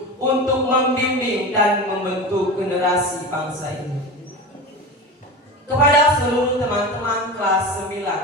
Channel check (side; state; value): both; normal; correlation 0.27